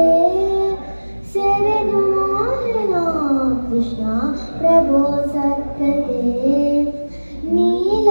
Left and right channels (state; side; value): inverted; both; correlation -1.00